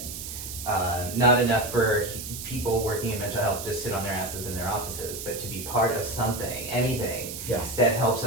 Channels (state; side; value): noise; right; hiss, 8 dB below the sound